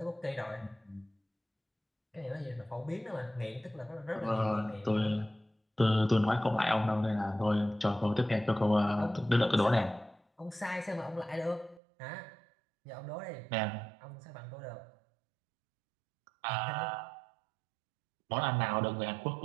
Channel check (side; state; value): left; drops out; at 11.8 s